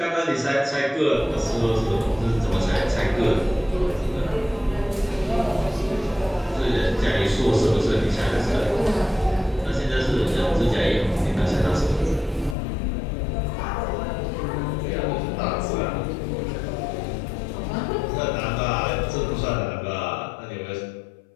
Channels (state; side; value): drops out; right; at 12.6 s